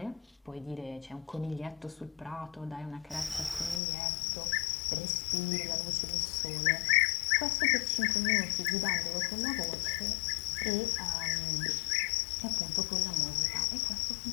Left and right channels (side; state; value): right; drops out; at 3.8 s